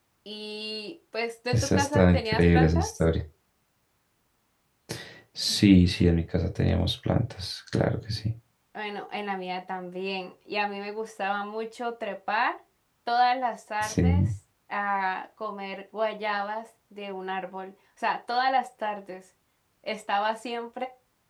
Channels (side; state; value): both; identical; correlation 1.00